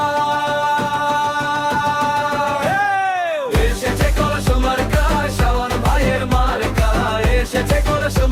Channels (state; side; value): identical; both; correlation 1.00